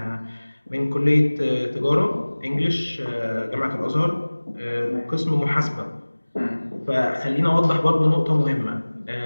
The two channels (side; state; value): both; inverted; correlation -1.00